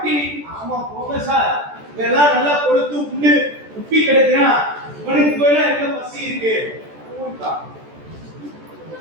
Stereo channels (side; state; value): left; late; 14 ms